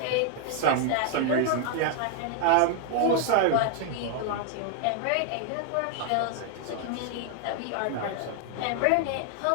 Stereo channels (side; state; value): both; different; correlation 0.00